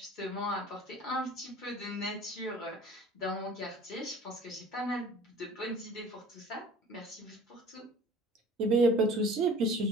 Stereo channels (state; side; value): normal; both; correlation 0.46